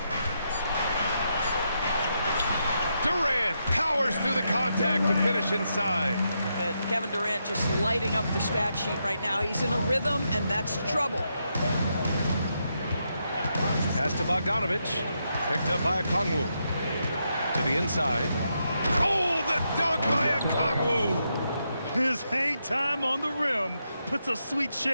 Durant powers through the contact to finish inside. Kevin Durant just lighting up the stat sheet right now. He's in a rhythm, and that's trouble. Pass to Bogdanovich. Picked up by Okongwu. To the inside. Oh, the dunk by Okongwu! His hang time on the rim puts a sweet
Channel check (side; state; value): both; inverted; correlation -0.82